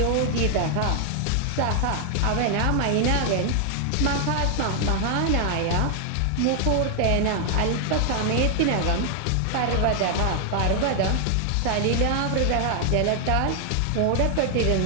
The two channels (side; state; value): both; different; correlation 0.00